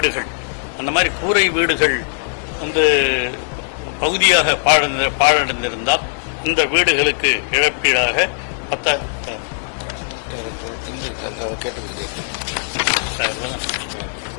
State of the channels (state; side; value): silent; right; digital silence